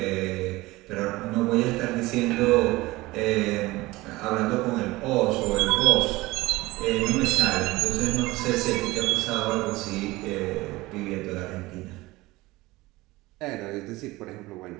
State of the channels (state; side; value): quieter; left; 20.1 dB